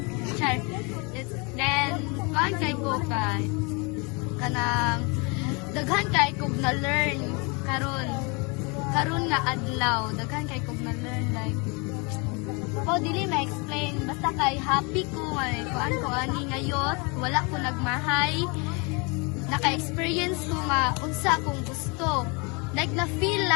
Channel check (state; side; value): quieter; right; 30.6 dB